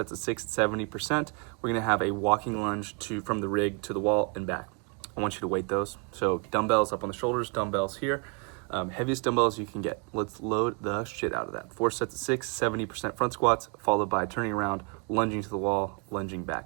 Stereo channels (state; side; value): quieter; left; 33.7 dB